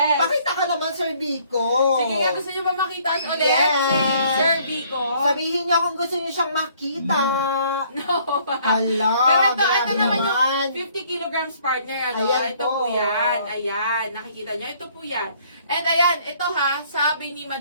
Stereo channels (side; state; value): both; inverted; correlation -0.61